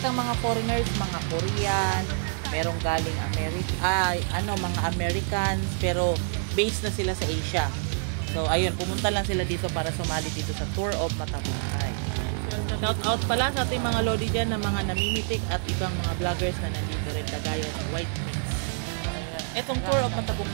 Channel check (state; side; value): silent; left; 60 dB below the other